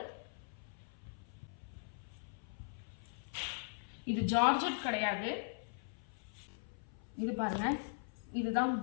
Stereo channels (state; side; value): silent; right; 51 dB below the other